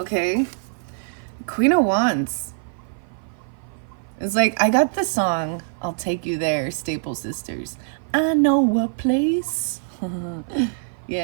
Queen of Wands. It's like, I got the song, I'll Take You There, Staple Sisters. I know a place.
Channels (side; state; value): left; silent; 55 dB below the other